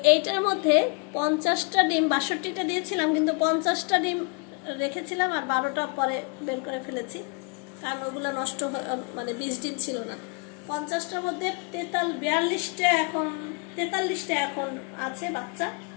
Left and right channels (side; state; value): right; quieter; 36.0 dB